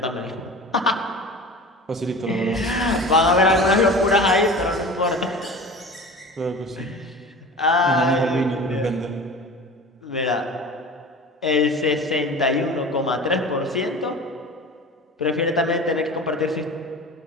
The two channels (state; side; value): normal; both; correlation 0.36